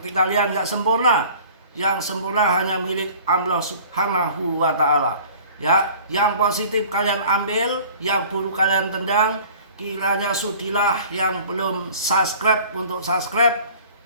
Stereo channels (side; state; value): both; inverted; correlation -0.47